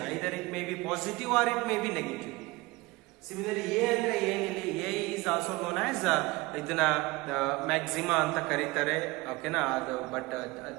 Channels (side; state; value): left; quieter; 22.5 dB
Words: Either it may be positive or it may be negative. Similarly A ಅಂದರೆ ಏನಿಲ್ಲಿ, A is also known as ಇದನ್ನ ಮ್ಯಾಕ್ಸಿಮಾ ಅಂತ ಕರೀತಾರೆ, ಓಕೆನಾ. ಅದು ಬಟ್